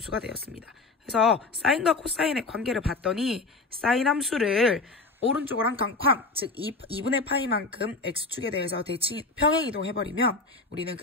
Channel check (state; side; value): quieter; right; 3.6 dB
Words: 되었습니다. 그래서 사인과 코사인의 관계를 봤더니 사인 함수를 오른쪽으로 한 칸, 즉 2분의 파이만큼 x축에 대해서 대칭 평행이동해버리면 우리는